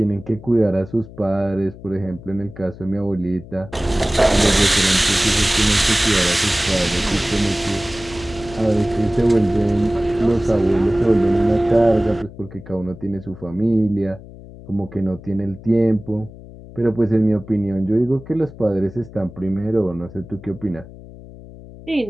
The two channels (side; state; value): left; noise; hum, 17 dB below the sound